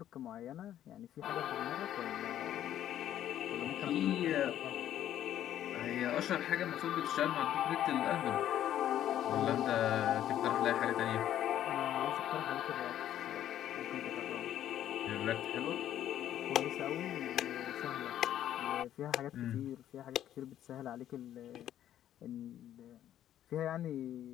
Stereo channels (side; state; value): right; quieter; 11.5 dB